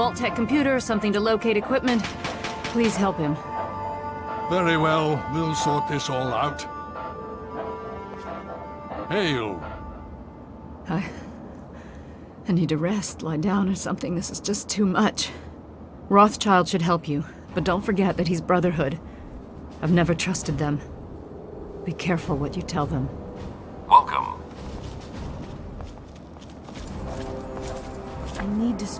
computer, something to locate equipment. Please help him. Very well. We'll sort this all out. Hail. I need to rest, lie down or something. This is just too much. Rothschild should help you, but don't forget that he's Brotherhood. I've never trusted them. Be careful what you tell them. Welcome. I need to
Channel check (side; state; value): both; identical; correlation 1.00